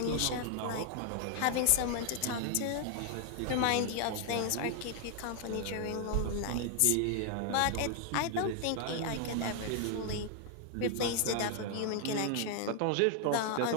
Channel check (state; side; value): different; both; correlation 0.00